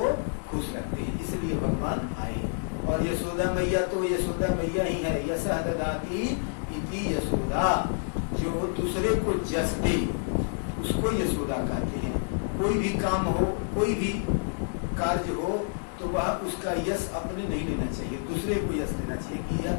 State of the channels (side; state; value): right; silent; digital silence